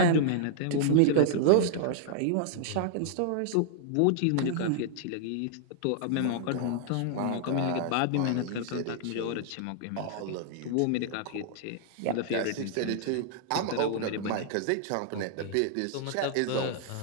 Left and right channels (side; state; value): both; different; correlation -0.01